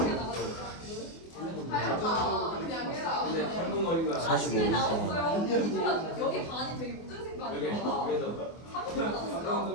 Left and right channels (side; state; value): right; late; 24 ms